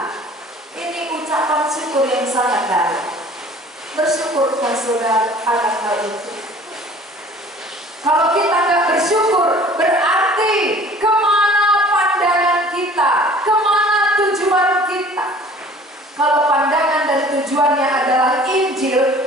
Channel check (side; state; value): both; normal; correlation 0.49